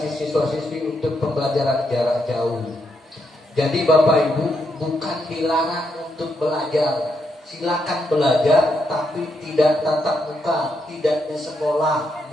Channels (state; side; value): normal; both; correlation 0.80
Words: siswa-siswi untuk pembelajaran jarak jauh. Jadi Bapak Ibu bukan dilarang untuk belajar, silakan belajar tapi tidak tatap muka, tidak di sekolah